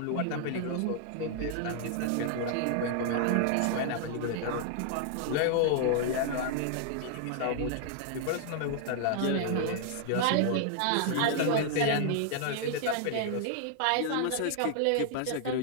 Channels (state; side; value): different; both; correlation 0.00